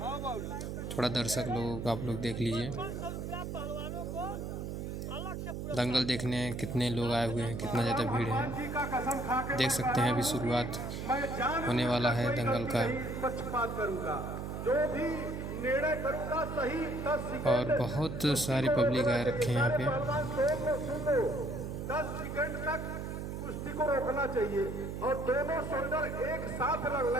थोड़ा दर्शक लोग आप लोग देख लीजिए, दंगल देखने कितने लोग आए हुए हैं, कितना ज़्यादा भीड़ है। देख सकते हैं अभी शुरुआत होने वाला है दंगल का, जो भी निर्णय करूंगा सही 10 और बहुत सारी पब्लिक आए रखे हैं यहाँ पे। 10 सेकंड तक कुश्ती को रोकना चाहिए और दोनों शोल्डर एक साथ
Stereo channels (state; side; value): noise; right; hum, 5 dB below the sound